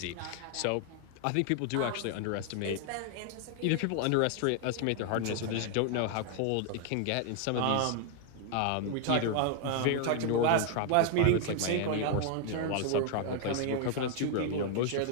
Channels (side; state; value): both; different; correlation 0.00